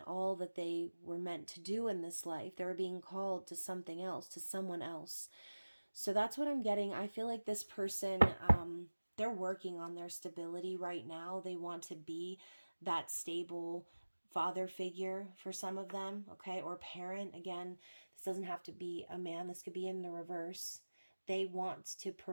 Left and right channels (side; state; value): both; inverted; correlation -1.00